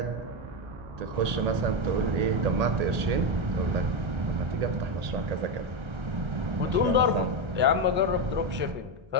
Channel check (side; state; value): left; late; 1.8 ms